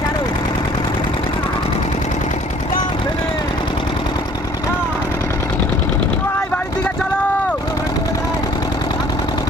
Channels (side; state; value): both; normal; correlation 0.55